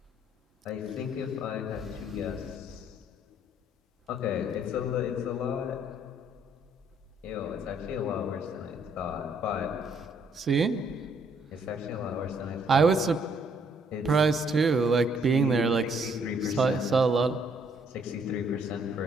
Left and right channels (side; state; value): both; normal; correlation 0.67